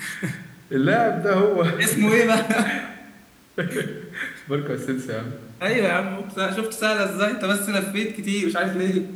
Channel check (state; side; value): identical; both; correlation 1.00